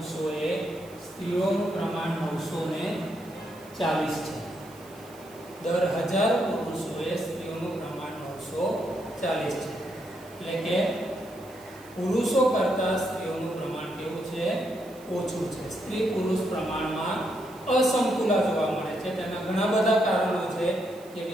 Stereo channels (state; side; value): noise; right; hiss, 24 dB below the sound